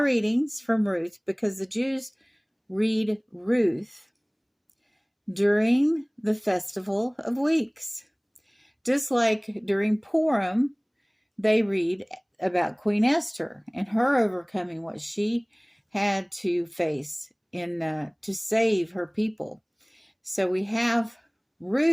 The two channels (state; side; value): identical; both; correlation 1.00